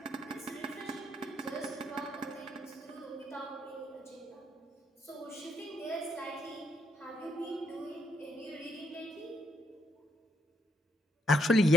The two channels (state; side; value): normal; both; correlation 0.70